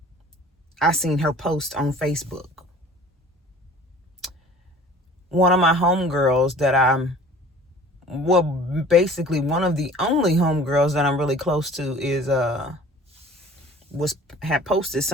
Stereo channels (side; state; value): both; normal; correlation 0.47